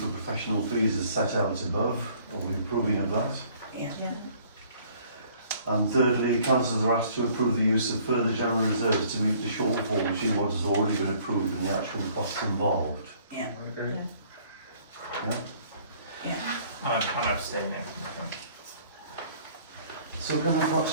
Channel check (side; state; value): both; inverted; correlation -0.58